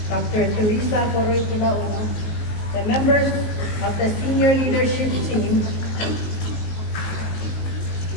Dr. Teresa Coroy Pulaono, the members of the senior leadership team,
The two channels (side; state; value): right; late; 19 ms